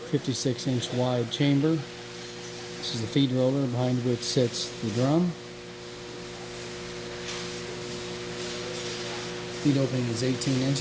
wide chamber. This is the feed roller behind which sits the drum. Feed opening is 18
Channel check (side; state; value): both; identical; correlation 1.00